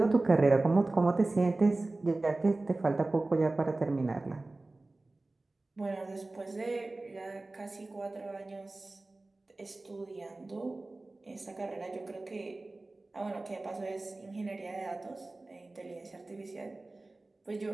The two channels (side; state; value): left; quieter; 3.0 dB